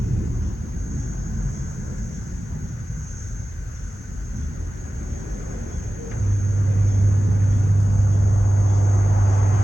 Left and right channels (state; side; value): normal; both; correlation 0.96